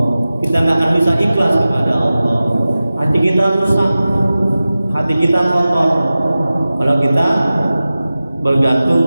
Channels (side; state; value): both; inverted; correlation -0.96